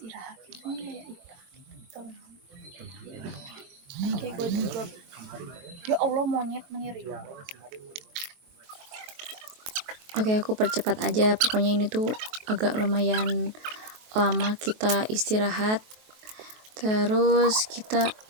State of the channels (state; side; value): late; left; 23 ms